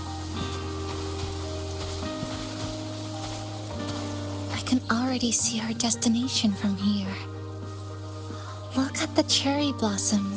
I can already see our destination from here. Look at the cherry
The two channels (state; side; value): identical; both; correlation 1.00